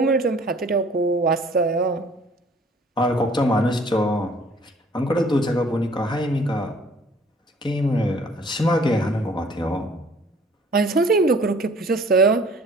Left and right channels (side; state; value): both; normal; correlation 0.54